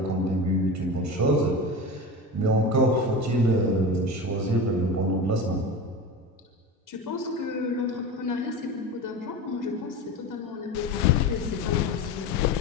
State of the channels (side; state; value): both; normal; correlation 0.27